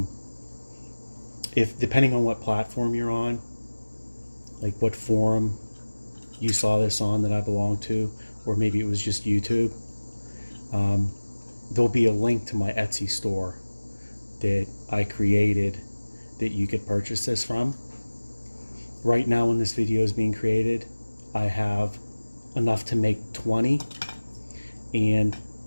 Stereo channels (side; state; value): both; inverted; correlation -1.00